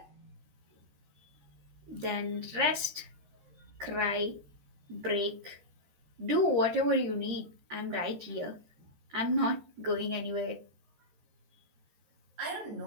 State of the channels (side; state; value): left; late; 13 ms